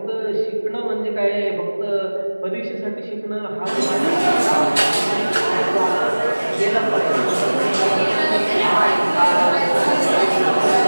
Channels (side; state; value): both; inverted; correlation -1.00